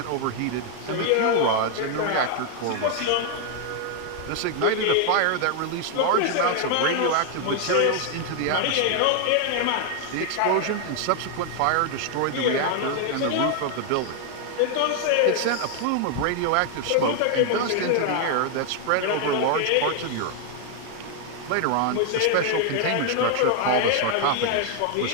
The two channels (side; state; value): both; different; correlation 0.00